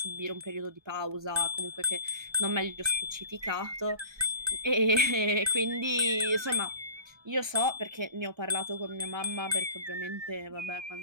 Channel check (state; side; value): late; left; 1.3 ms